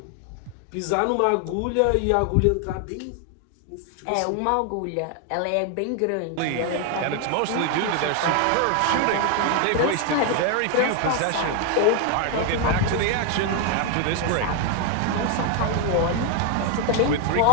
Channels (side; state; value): both; different; correlation 0.01